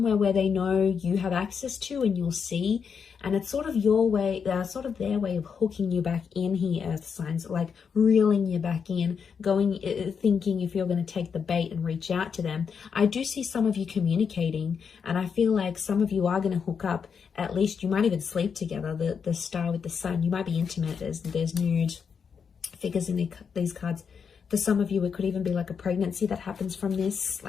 where they know you have access to and you'll see. And it's sort of your way, sort of their way of hooking you back in here, earth signs, like reeling you back in, thinking if you're going to take the bait and reach out to them. I do see some of you communicating, and I feel like some of you are going to hook up. At least you might even sleep together. The star with the sun, you might be intimate. There's nude figures in these cards. For some of you, it could even be like a pregnancy that happens from this,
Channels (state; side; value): quieter; right; 6.4 dB